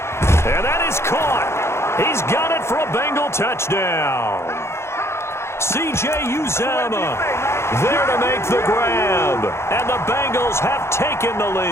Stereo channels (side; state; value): right; late; 0.13 ms